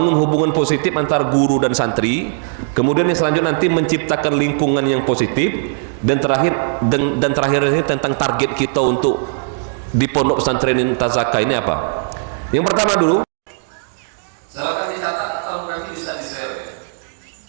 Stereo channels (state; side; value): silent; left; digital silence